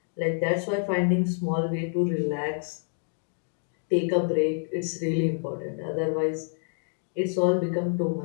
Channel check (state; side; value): silent; right; digital silence